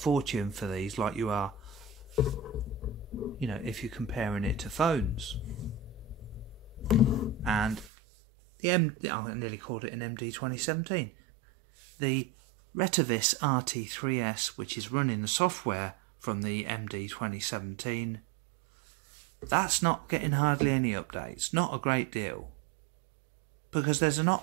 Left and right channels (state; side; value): drops out; left; at 7.9 s